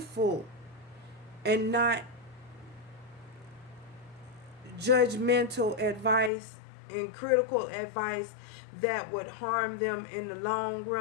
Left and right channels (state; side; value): drops out; right; at 6.3 s